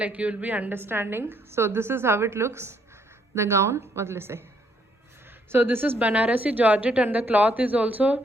you will be understanding. So this is how it looks, the gown. What will I say? So this is Banarasi georgette, and the cloth is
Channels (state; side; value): normal; both; correlation 0.70